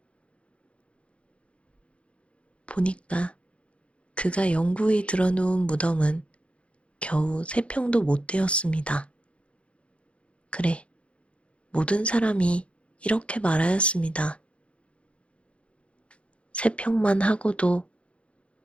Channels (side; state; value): right; late; 0.061 ms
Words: 보니까 그가 영구히 들어놓은 무덤은 겨우 3평도 못 되었습니다. 그래, 모든 사람이 이렇게 말하였습니다. 3평만 하고도